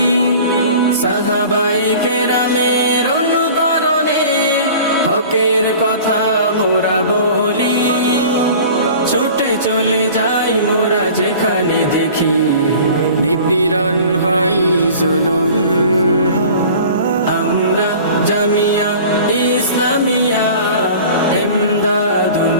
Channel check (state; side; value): inverted; both; correlation -0.43